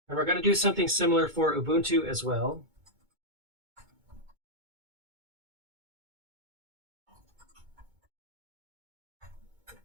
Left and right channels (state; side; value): late; left; 2.2 ms